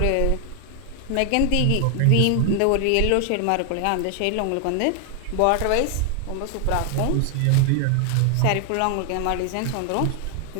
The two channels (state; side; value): different; both; correlation 0.00